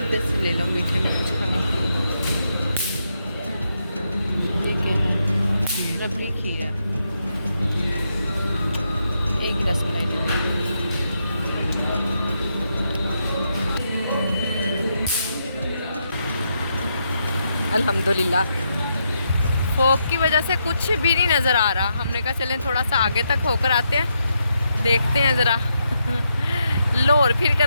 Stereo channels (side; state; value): both; inverted; correlation -0.81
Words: से ले लो, मीठे में कुछ खाने के लिए। ये क्या है? रबड़ी खीर है, एक ही रसमलाई ले लो। अल्हम्दुलिल्लाह फोक की वजह से कुछ भी नहीं नज़र आ रहा। हमने कहा चलें थोड़ा सा आगे तक होकर आते हैं, देखते हैं ज़रा लाहौर फिर